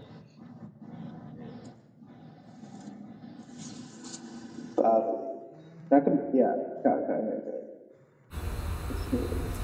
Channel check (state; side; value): identical; both; correlation 1.00